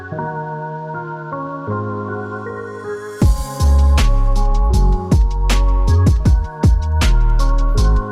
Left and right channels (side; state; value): both; identical; correlation 1.00